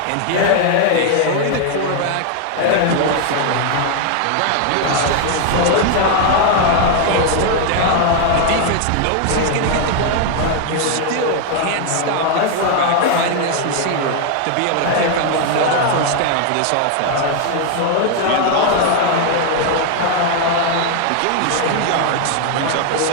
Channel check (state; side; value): different; both; correlation 0.00